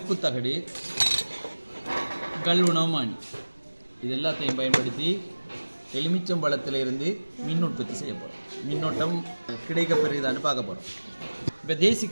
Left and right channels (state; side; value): inverted; both; correlation -1.00